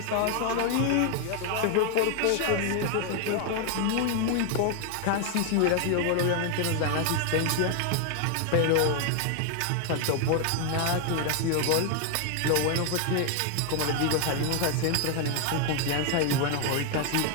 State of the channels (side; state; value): both; different; correlation 0.00